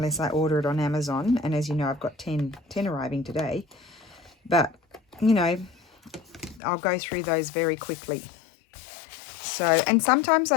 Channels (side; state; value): right; drops out; at 6.6 s